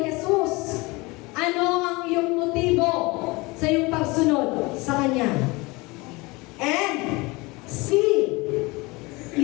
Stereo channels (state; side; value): quieter; right; 24.3 dB